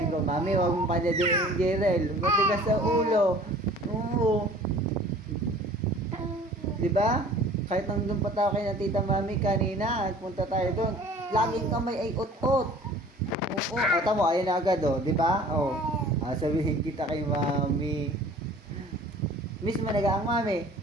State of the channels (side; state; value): both; normal; correlation 0.48